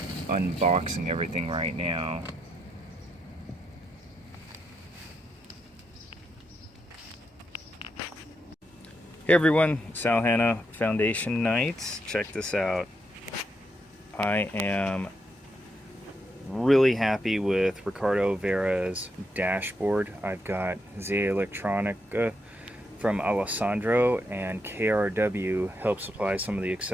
unboxing everything right now. Hey everyone, Sal Hanna Foundation Nights. Check this out. I am really happy with Ricardo Vera's dashboard. I've got ZA Electronica from Alessandro, and KRW helped supply some of the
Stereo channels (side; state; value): both; normal; correlation 0.80